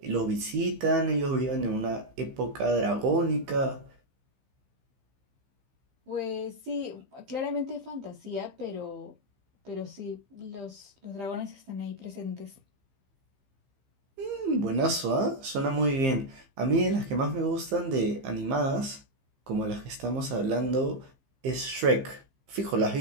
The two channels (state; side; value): late; left; 15 ms